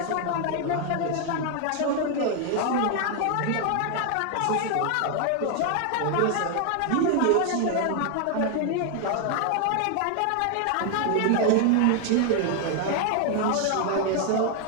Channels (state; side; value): different; both; correlation 0.01